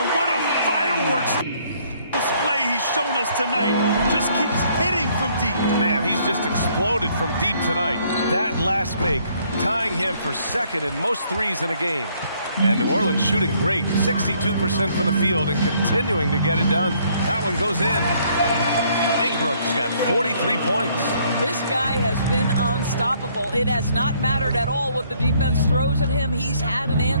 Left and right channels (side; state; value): both; inverted; correlation -0.65